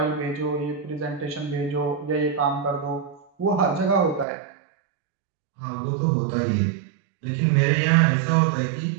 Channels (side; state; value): left; drops out; at 4.2 s